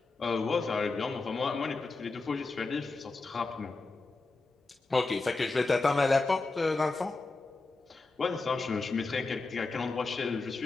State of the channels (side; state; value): right; quieter; 3.6 dB